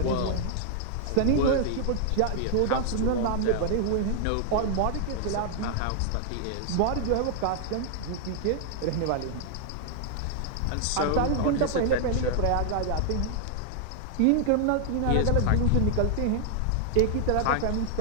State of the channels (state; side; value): different; both; correlation -0.01